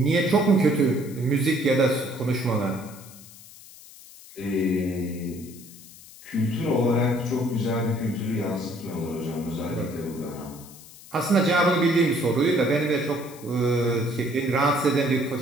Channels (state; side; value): noise; left; hiss, 20 dB below the sound